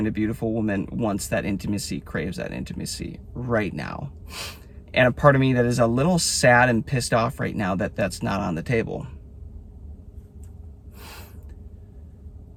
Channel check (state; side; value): identical; both; correlation 1.00